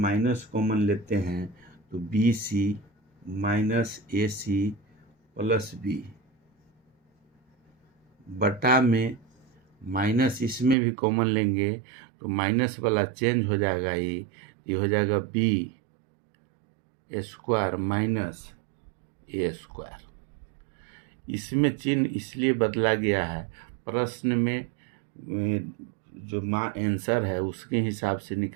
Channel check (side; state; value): left; drops out; at 10.8 s